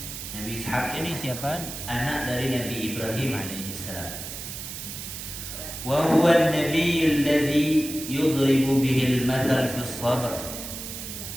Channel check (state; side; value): noise; right; hiss, 8 dB below the sound